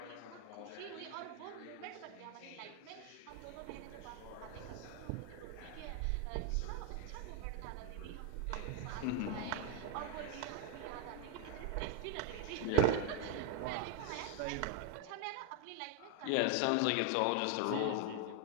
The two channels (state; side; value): different; both; correlation 0.01